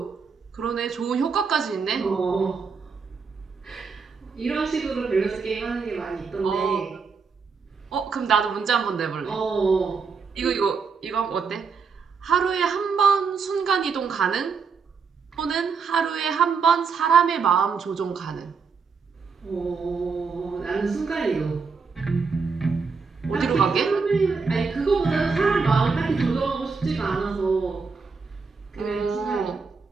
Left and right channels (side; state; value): left; quieter; 5.2 dB